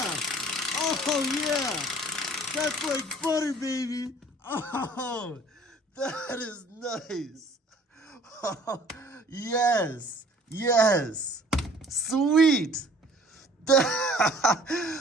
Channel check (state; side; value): normal; both; correlation 0.53